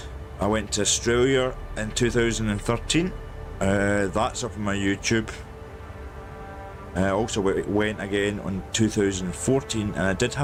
went to Australia in 2013. That's up on my YouTube. Also it went again on 2014, and I did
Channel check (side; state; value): both; identical; correlation 1.00